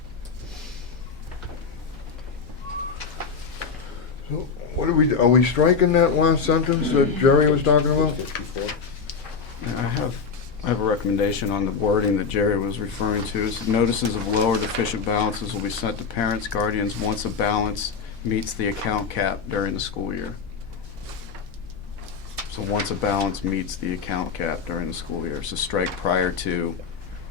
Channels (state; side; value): quieter; right; 5.5 dB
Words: So what are we striking that last sentence that Jerry was talking about? 54. I have a recommendation on the wording that Jerry was referring to. Is notices of low or deficient balances will be sent to parents, guardians once a balance meets the account cap during the school year. So once a balance meets the account cap during the school year. So strike prior to,